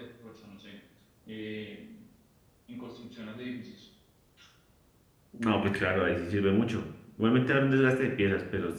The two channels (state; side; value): identical; both; correlation 1.00